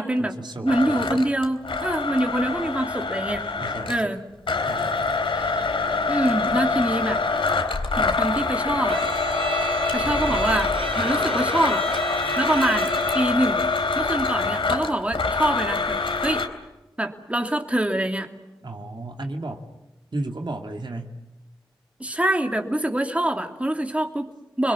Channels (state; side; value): normal; both; correlation 0.61